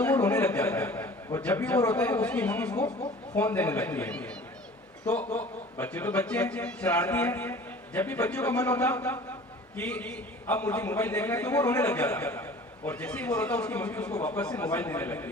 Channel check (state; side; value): normal; both; correlation 0.44